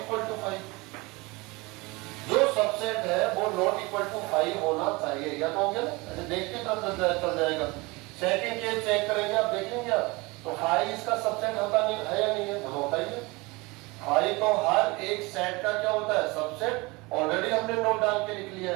टू फाई, जो सबसेट है वो नॉट इक्वल टू फाई होना चाहिए, या तो हो गया ना, ऐसे देख के चल जाएगा। सेकंड केस चेक करेंगे, आप देखेंगे आप तो फाई इसका सबसेट होता नहीं है या नहीं है, तो होता ही है। फाई तो हर एक सेट का क्या होता है, सबसेट, ऑलरेडी हमने नोट डाल के लिख लिया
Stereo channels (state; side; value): quieter; left; 24.4 dB